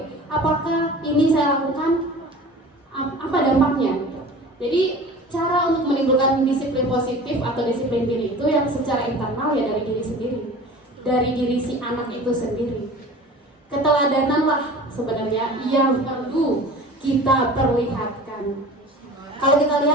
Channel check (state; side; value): normal; both; correlation 0.40